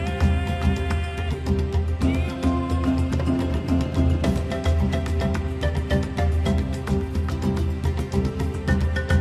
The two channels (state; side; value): identical; both; correlation 1.00